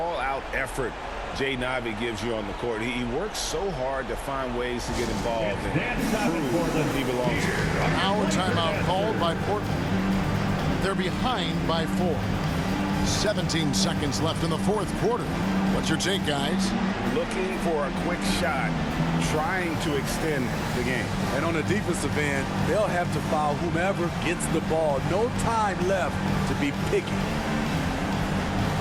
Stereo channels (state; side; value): identical; both; correlation 1.00